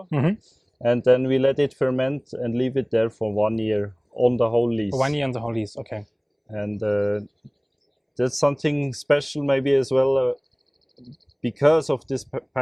Mm-hmm. and then we let it ferment and leave it there for 1 year on the whole lease. 1 year on the whole lease, okay. And that's something special maybe as well, because of this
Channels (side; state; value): both; identical; correlation 1.00